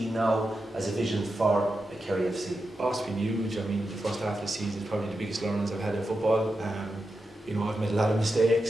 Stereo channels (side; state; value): both; normal; correlation 0.89